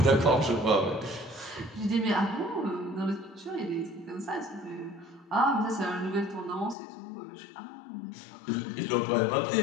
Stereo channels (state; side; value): drops out; right; at 6.8 s